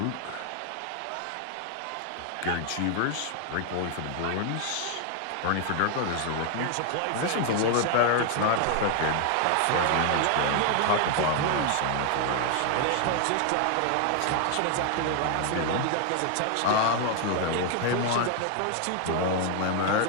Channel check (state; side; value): different; both; correlation 0.00